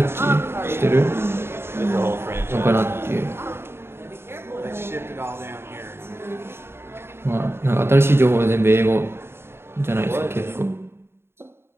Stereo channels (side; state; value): left; late; 0.12 ms